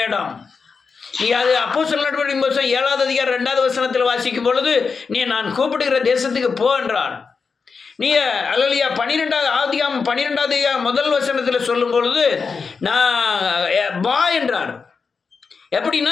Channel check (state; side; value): quieter; right; 5.1 dB